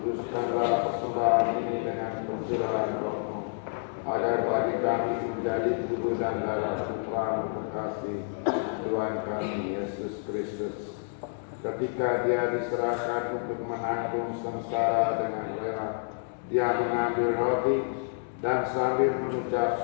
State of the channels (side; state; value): right; silent; digital silence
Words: persembahan ini dengan pencurahan Roh-Mu, agar bagi kami menjadi tubuh dan darah Putra-Mu terkasih, Tuhan kami Yesus Kristus. Ketika Dia diserahkan untuk menanggung sengsara dengan rela, Dia mengambil roti dan sambil